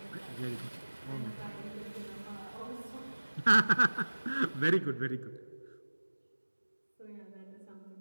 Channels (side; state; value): both; inverted; correlation -1.00